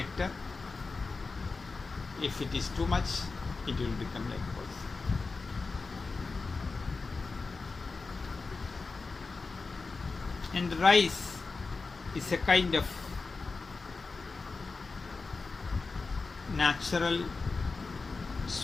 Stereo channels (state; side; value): quieter; right; 4.1 dB